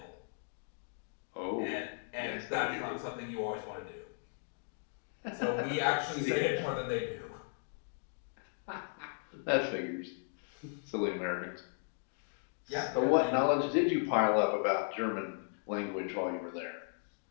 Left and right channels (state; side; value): silent; right; digital silence